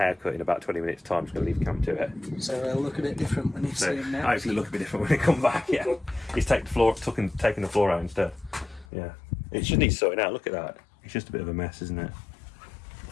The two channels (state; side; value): drops out; right; at 8.8 s